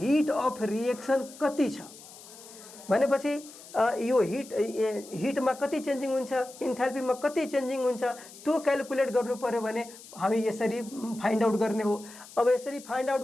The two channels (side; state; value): left; noise; hiss, 18 dB below the sound